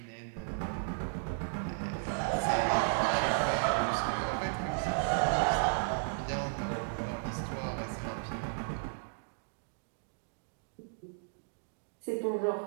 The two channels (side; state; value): left; silent; digital silence